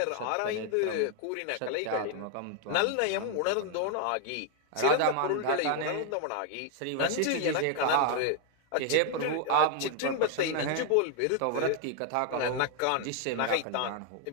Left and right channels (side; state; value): both; different; correlation 0.00